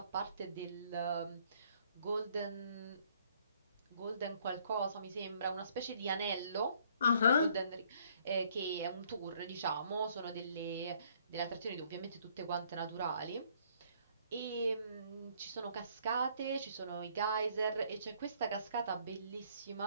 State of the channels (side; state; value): both; inverted; correlation -0.63